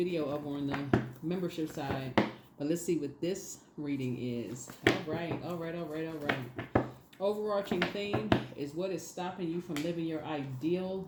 over on the membership side, but let's see what this reading is. All right. Overarching theme is what is stopping you from living your ideal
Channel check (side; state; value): both; identical; correlation 1.00